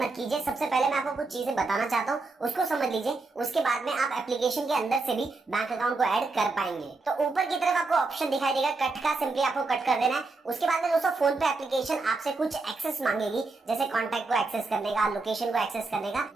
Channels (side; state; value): left; quieter; 3.7 dB